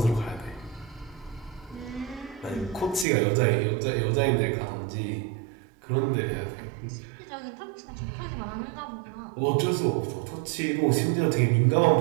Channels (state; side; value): drops out; left; at 3.1 s